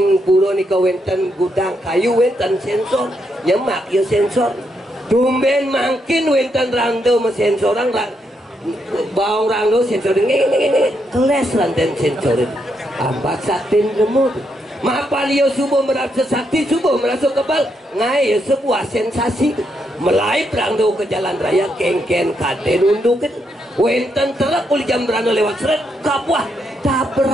puro ni ka wenten gudang kayu wenten sensor nyemak yo sensor tumben makin wenten rangde mesensorang bawang rangdo sensor ini keles ranten sensor ambat satin lemut mapan yo subuh merasa sakti subuh merasa kebal ngai sebuah sensasi melaip rangdo ke jalan raya kengken kade nundukin wenten terak uli jam berano lewat seret kapuah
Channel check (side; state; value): both; normal; correlation 0.79